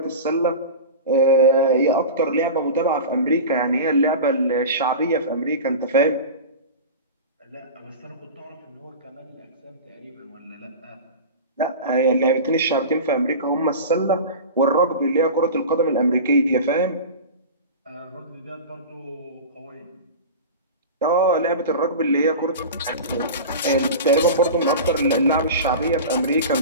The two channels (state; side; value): inverted; both; correlation -0.30